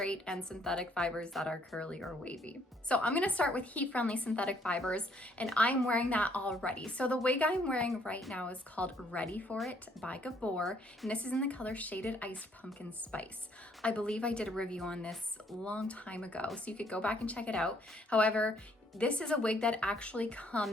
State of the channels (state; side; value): normal; both; correlation 0.66